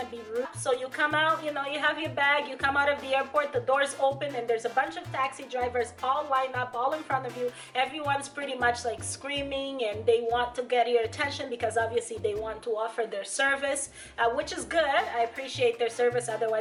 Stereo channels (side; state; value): both; identical; correlation 1.00